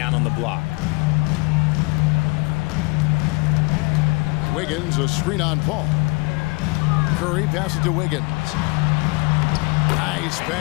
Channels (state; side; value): quieter; right; 27.7 dB